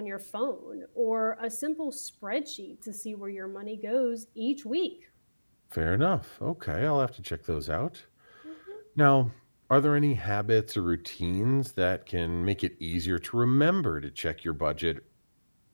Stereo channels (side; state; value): both; inverted; correlation -1.00